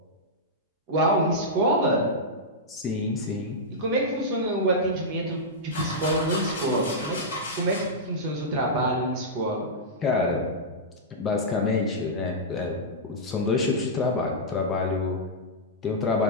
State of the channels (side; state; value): both; normal; correlation -0.11